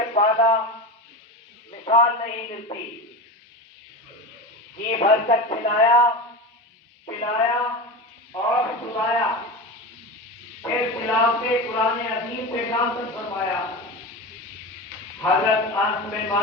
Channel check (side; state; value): both; normal; correlation 0.25